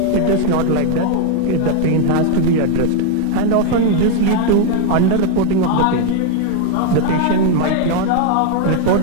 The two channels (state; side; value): different; both; correlation 0.00